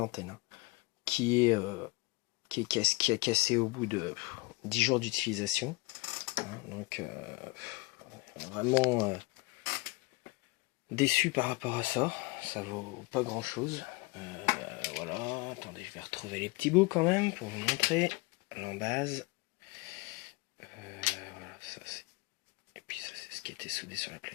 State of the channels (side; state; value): right; quieter; 24.3 dB